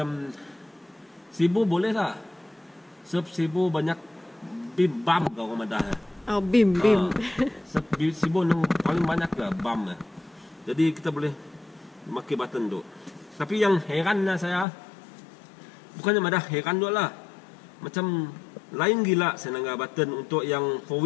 sibu boleh tak? Sebab sibu banyak bam kau orang madah. Bim. Sebab sibu yang paling banyak lah bam. Jadi kita boleh pakai button tu. Tapi yang herannya saya, bukannya madah heran tu lah. Macam lain gila saya nangga button untuk yang 4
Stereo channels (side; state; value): right; drops out; at 14.7 s